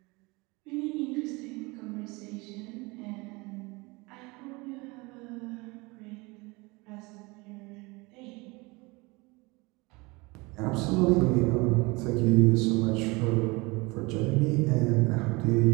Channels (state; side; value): quieter; left; 25.1 dB